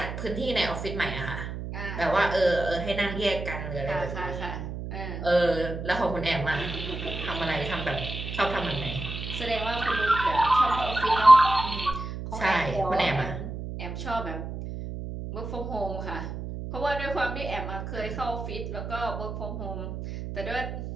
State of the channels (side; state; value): right; noise; hum, 7 dB below the sound